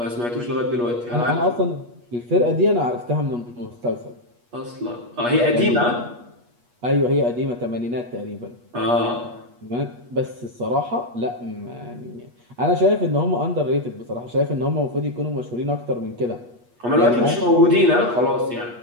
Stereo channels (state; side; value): late; left; 8.3 ms